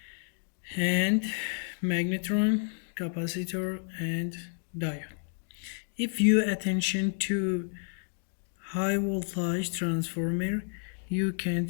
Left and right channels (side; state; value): right; silent; 57 dB below the other